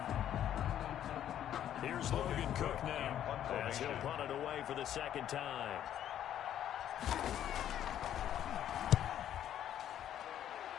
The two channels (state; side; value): quieter; right; 10.8 dB